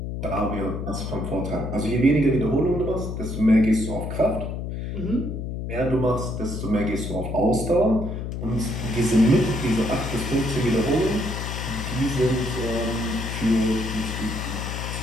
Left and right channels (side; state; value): left; noise; hum, 5 dB below the sound